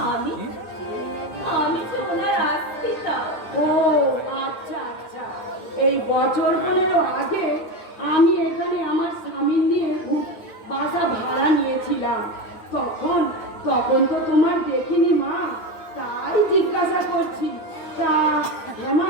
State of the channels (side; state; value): right; late; 9.1 ms